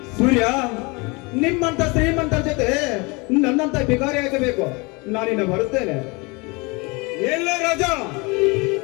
ಸೂರ್ಯ, ನಿಮ್ಮಂತ ಶ್ರೀಮಂತರ ಜೊತೆ ನನ್ನಂತ ಭಿಕಾರಿ ಆಗಬೇಕು. ನಾನಿನ್ನ ಬರುತ್ತೇನೆ. ಎಲ್ಲ ರಾಜ,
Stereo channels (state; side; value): quieter; right; 27.5 dB